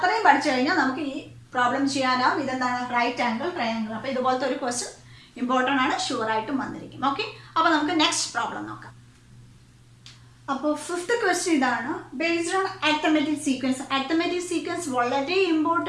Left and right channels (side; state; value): both; identical; correlation 1.00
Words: പഠിച്ചു കഴിഞ്ഞാൽ നമുക്ക് ഈ പ്രോബ്ലം ചെയ്യാനാവും. ഇതെന്താണ്? Right angle triangle. അപ്പൊ ഇതുപോലത്തെ ഒരു ക്വസ്റ്റ്യൻ ഇമ്പോർട്ടൻ്റ് ആണ്, ഷുവർ ആയിട്ടും വന്നിരിക്കും. ഓക്കെ, അപ്പൊ നമുക്ക് നെക്സ്റ്റ് പ്രോബ്ലം നോക്കാം. അപ്പോൾ ഫിഫ്ത്ത് ക്വസ്റ്റ്യൻ ഇതാണ്. Based on arithmetic sequence. Arithmetic sequence വളരെ